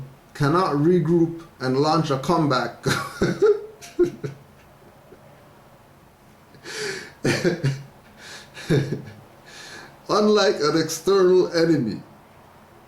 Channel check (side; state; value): both; identical; correlation 1.00